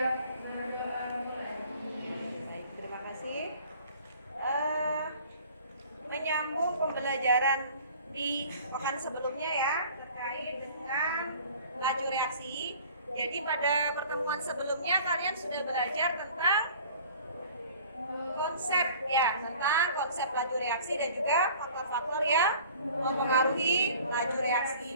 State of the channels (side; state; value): both; inverted; correlation -0.49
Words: Baik, terima kasih. Menyambung pembelajaran di pekan sebelumnya ya terkait dengan laju reaksi. Jadi pada pertemuan sebelumnya kalian sudah belajar tentang konsep laju reaksi dan juga faktor-faktor yang mempengaruhi laju